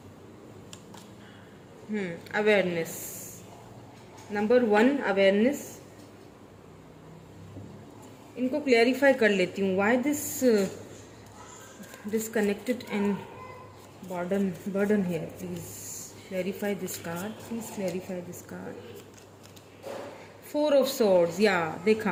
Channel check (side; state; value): both; identical; correlation 1.00